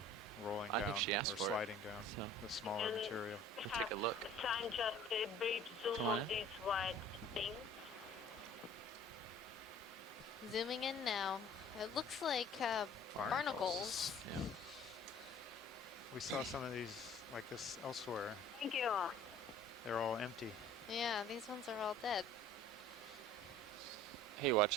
rolling down or sliding down the smaller material. Take a look. Try just a brief zoom on these white things. Zooming in now. It looks like barnacles. Yeah. We saw some of these like this elsewhere. Thank you. They're all empty. Yeah, these ones are all dead. Hey,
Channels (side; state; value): both; normal; correlation 0.49